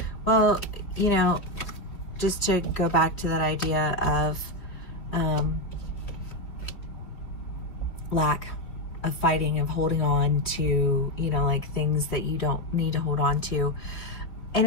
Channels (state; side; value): late; right; 3.3 ms